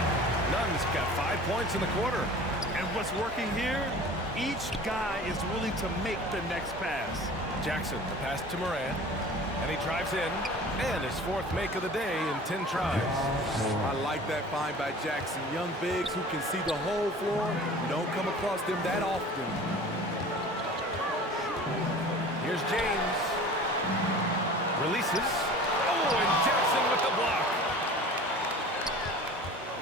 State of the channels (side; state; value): both; normal; correlation 0.42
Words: Nunn's got 5 points in the quarter. And what's working here? Each guy is willing to make the next pass. Jackson, the pass to Moran. And he drives in. And his 4th make of the day in 10 tries. I like that find by Jackson. Young bigs who can see the whole floor. You don't come across them that often. Here's James. Releases. Oh, and Jackson with the block.